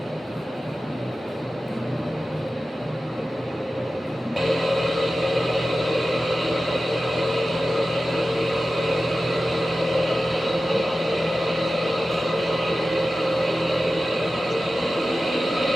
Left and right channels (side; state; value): both; normal; correlation 0.94